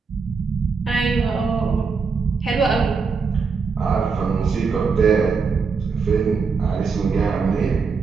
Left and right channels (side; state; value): left; quieter; 5.1 dB